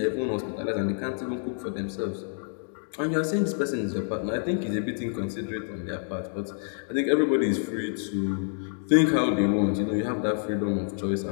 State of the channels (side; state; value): right; silent; digital silence